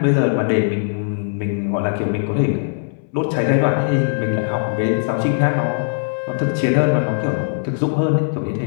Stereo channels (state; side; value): silent; right; 66 dB below the other